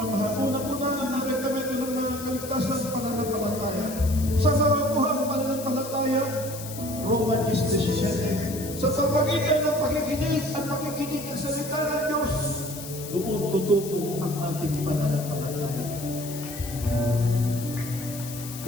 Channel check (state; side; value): noise; left; hiss, 12 dB below the sound